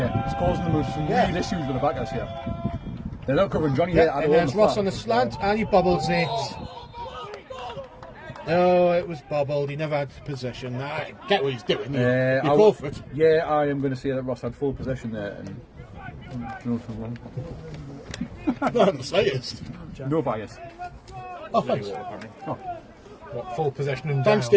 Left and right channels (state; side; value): identical; both; correlation 1.00